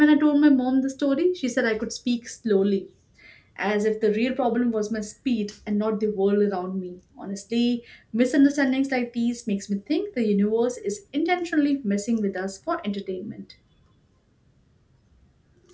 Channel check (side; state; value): both; identical; correlation 1.00